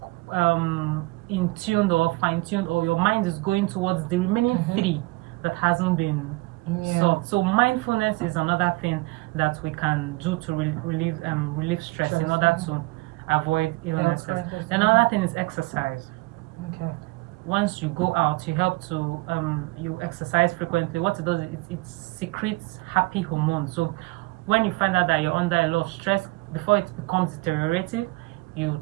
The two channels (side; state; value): left; quieter; 23.5 dB